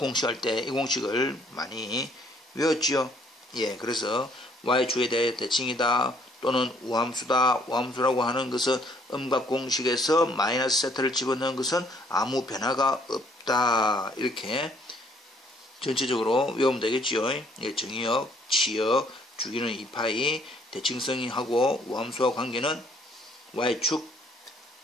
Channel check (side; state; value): both; normal; correlation 0.63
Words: 때 이 공식을 많이 외웠지요. 예, 그래서 Y축에 대해 대칭이다 또는 우함수다. 우함수라고 하는 것은 음각 공식에서 마이너스 세타를 집어넣은 것은 아무 변화가 없다. 이렇게 전체적으로 외우면 되겠지요. 예, 정의역, 치역, 주기는 2파이, 대칭성하고 우함수와 관계는 y축